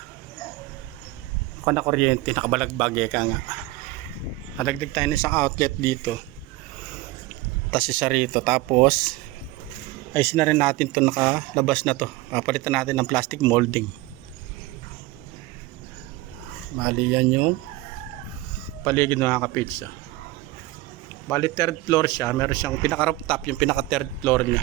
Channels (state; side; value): quieter; left; 18.2 dB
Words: kuryente, nakabalagbag ka nga. Nadagdag tayo ng isang outlet dito. Tapos isa rito. Tapos ayusin na rin natin to, nakalabas na to. Papalitan natin ng plastic molding. Bali yan yung paligid mga ka-page. Bali third floor siya, meron siyang pinaka roof top, yung pinaka third floor niya.